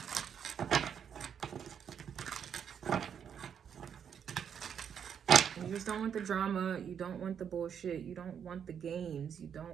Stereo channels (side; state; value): left; quieter; 8.0 dB